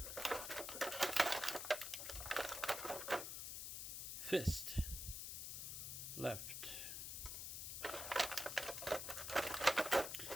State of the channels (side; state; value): left; noise; hiss, 5 dB below the sound